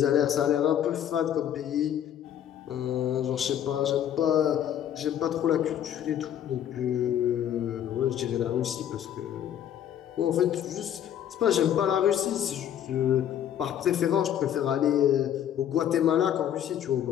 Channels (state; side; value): quieter; right; 10.2 dB